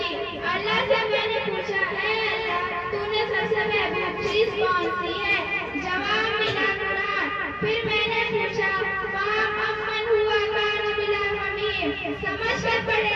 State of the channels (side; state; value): both; identical; correlation 1.00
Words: اللہ سے میں نے پوچھا اے اللہ تو نے سب سے محبوب چیز کون سی ہے؟ جواب ملا قرآن۔ پھر میں نے پوچھا امن ہوا کان بلا ممیم، سمجھ کر پڑھے